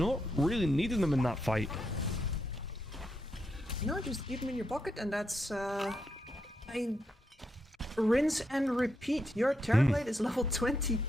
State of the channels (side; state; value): both; normal; correlation 0.82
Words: really needing them in that fight. No, just keep them in your pocket, and that's, I mean, rinse and repeat. Your Terrorblade is level